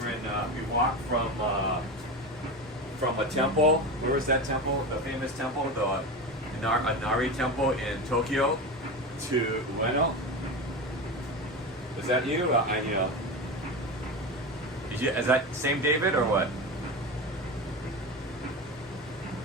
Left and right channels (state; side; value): normal; both; correlation 0.23